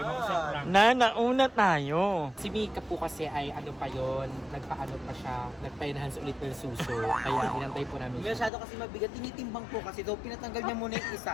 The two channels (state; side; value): drops out; right; at 8.5 s